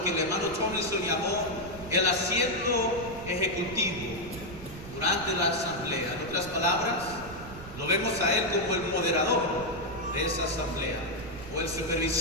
que el hermano Tomlinson llamó, el asiento ejecutivo durante la asamblea. En otras palabras, lo vemos a él como el moderador de esa asamblea, o el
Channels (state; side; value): noise; right; rumble, 14 dB below the sound